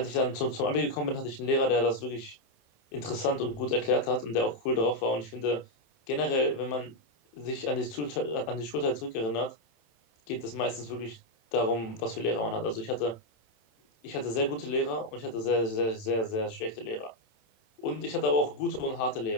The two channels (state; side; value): late; right; 27 ms